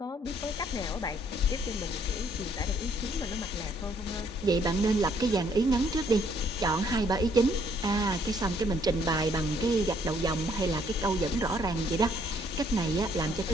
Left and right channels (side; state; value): both; normal; correlation 0.66